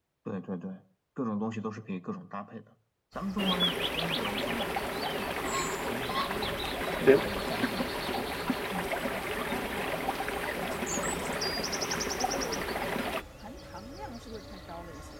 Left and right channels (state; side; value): identical; both; correlation 1.00